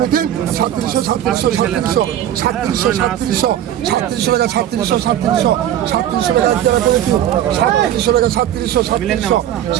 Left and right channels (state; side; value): quieter; left; 11.3 dB